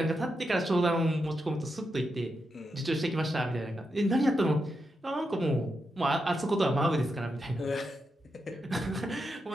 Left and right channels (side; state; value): both; normal; correlation 0.86